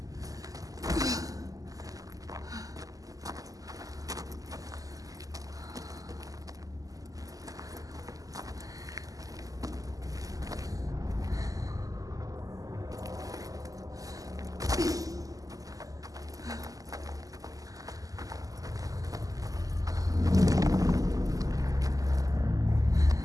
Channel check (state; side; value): late; left; 0.17 ms